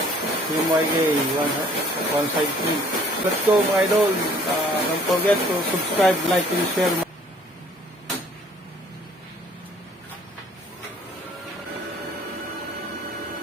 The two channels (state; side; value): normal; both; correlation 0.57